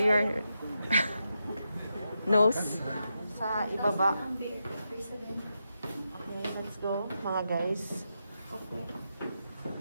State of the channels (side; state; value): both; inverted; correlation -0.86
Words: nose sa ibaba. Okay, let's go mga guys.